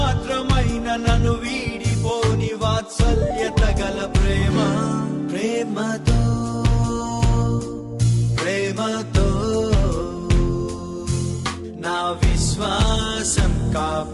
నన్ను వీడిపోని వాత్సల్యత గల ప్రేమ. ప్రేమతో ప్రేమతో నా విశ్వాసం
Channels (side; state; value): both; identical; correlation 1.00